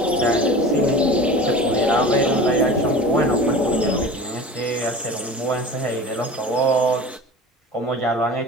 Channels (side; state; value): both; normal; correlation 0.37